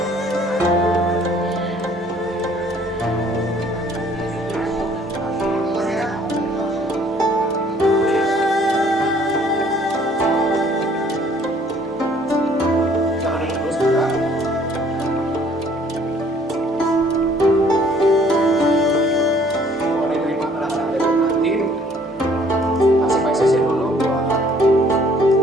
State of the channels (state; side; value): normal; both; correlation 0.59